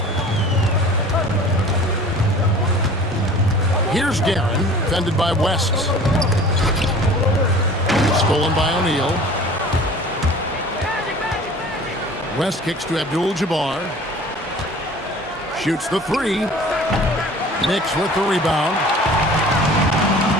Here's Guerin, defended by West. Stolen by O'Neal. West kicks to Abdul-Jabbar. Shoots the 3. Knicks with the rebound.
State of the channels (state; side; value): normal; both; correlation 0.45